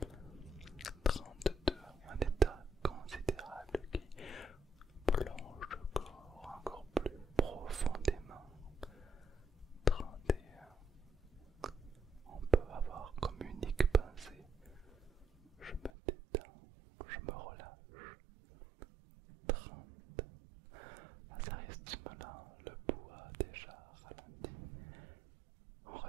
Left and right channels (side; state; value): left; drops out; at 15.9 s